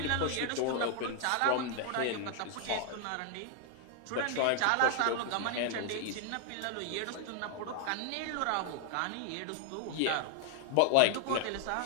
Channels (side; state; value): both; different; correlation 0.00